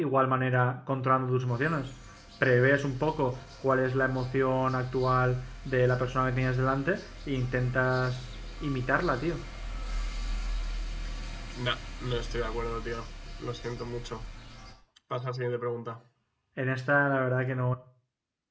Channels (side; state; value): both; identical; correlation 1.00